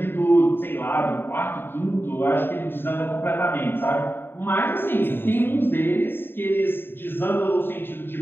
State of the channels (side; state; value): right; late; 0.10 ms